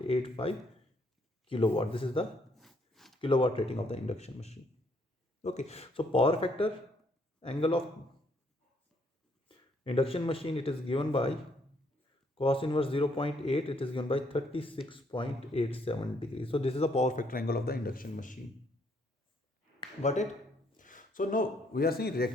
kilowatt. This is the kilowatt rating of the induction machine. Okay, so power factor angle of induction machine, it is given by cos inverse 0.8, it is given by 36.87 degrees. So this is the power factor angle of the induction machine. Got it? So now we are saying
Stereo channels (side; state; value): both; normal; correlation 0.70